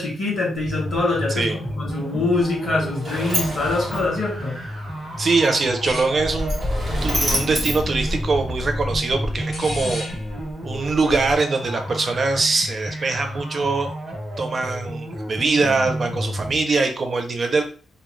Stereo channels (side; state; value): both; normal; correlation 0.85